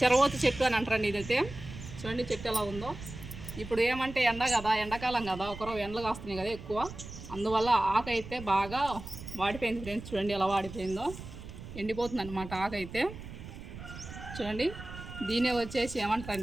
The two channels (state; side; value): noise; right; rumble, 12 dB below the sound